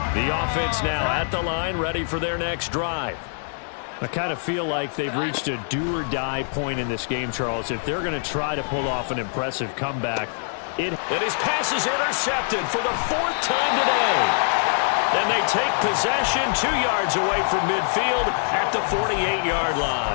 The offense now at the line, ready for their next drive. I kind of feel like they've reached a do-or-die point in this game, Charles. If they're going to try to pull off an impressive comeback, And his pass is intercepted for the 4th time today. Then they take possession 2 yards away from midfield at the 48-yard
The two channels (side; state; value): right; silent; 63 dB below the other